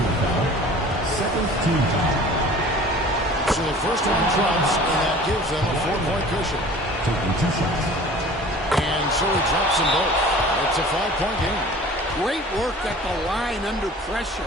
Second team foul. So the first one drops, and that gives them a 4-point cushion. Taking 2 shots. And so he drops them both. It's a 5-point game. Great work at the line under pressure.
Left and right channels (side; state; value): both; normal; correlation 0.45